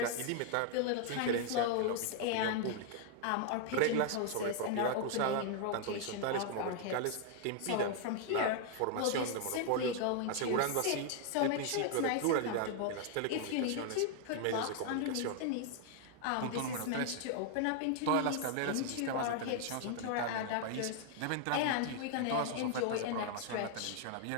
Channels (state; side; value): different; both; correlation 0.00